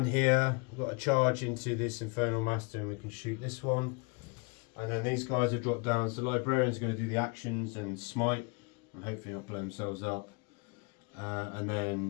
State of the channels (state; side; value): quieter; right; 31.1 dB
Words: here. We've got a charge into this Infernal Master, and we can shoot this one. And then these guys have dropped down. So the Librarian's going to do the actions and smite, and hopefully not blow themselves up. And